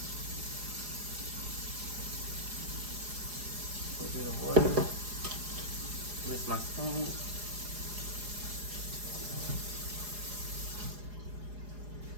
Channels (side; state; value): left; late; 4.8 ms